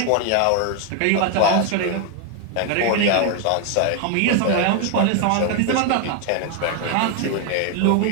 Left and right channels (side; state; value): both; different; correlation 0.00